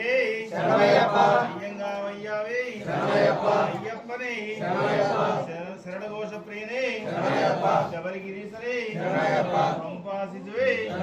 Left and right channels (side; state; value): both; identical; correlation 1.00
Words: శరణమయ్యప్ప. అయ్యంగావయ్యావే శరణమయ్యప్ప. అయ్యప్పనే శరణమయ్యప్ప. శరణఘోష ప్రియనే శరణమయ్యప్ప. శబరిగిరీశరే శరణమయ్యప్ప. పంపాసిజువే